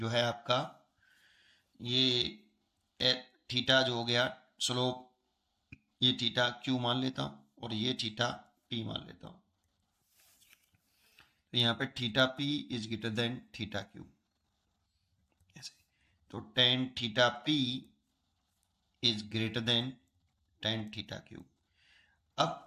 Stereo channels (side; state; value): both; identical; correlation 1.00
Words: है आपका, ये थीटा जो हो गया स्लोप, ये थीटा Q मान लेता हूं और ये थीटा P मान लेता हूं। तो यहां पे theta P is greater then theta Q, ऐसे। तो tan theta P is greater then tan theta Q।